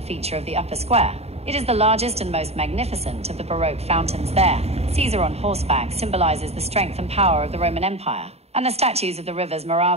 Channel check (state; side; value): late; left; 0.30 ms